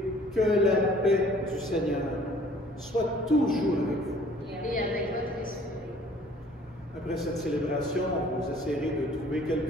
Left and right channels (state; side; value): normal; both; correlation 0.55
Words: que la paix du Seigneur soit toujours avec vous. Et avec votre esprit. Après cette célébration, vous essayerez de trouver